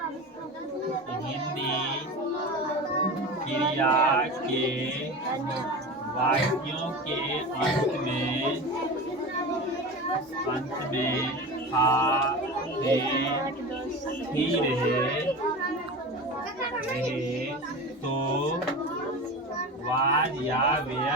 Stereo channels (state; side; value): normal; both; correlation 0.29